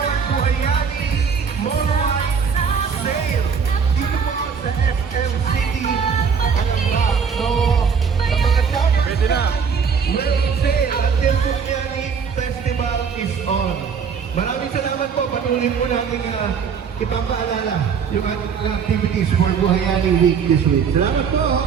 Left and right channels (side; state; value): left; quieter; 6.3 dB